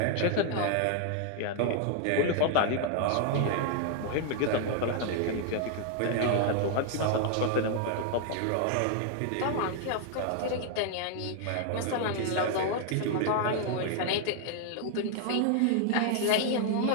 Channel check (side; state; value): both; different; correlation 0.00